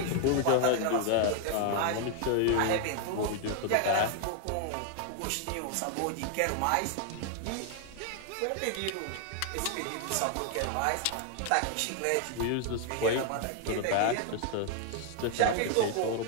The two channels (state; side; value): different; both; correlation 0.00